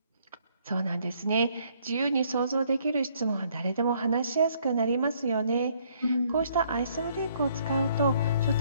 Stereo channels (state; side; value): inverted; both; correlation -0.66